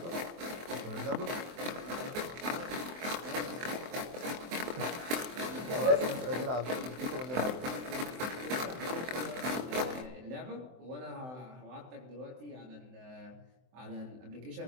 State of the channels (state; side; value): late; left; 23 ms